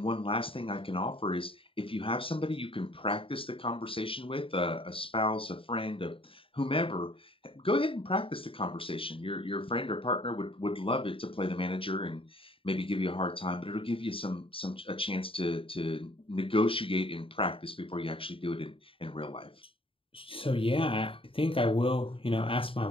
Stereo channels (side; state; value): right; late; 0.26 ms